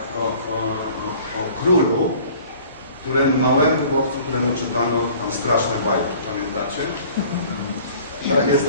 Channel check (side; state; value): both; inverted; correlation -0.49